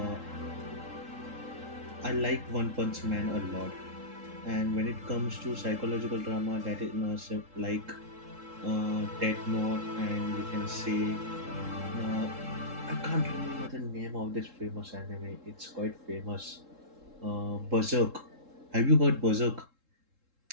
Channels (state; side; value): late; left; 3.7 ms